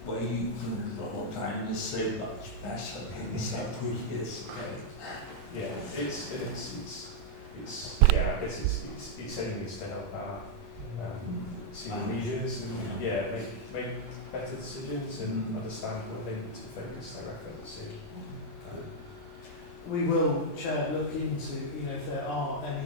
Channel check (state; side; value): normal; both; correlation -0.03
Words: where you can draw down is so much better than several years ago. Yeah, I guess it's aiming to help our senior leaders and make better decisions and understand what they need to focus their efforts in. We will, Chair, look into if there are